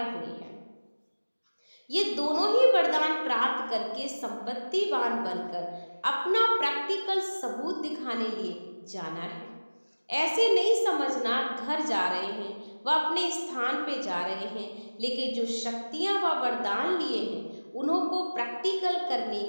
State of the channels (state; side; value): inverted; both; correlation -1.00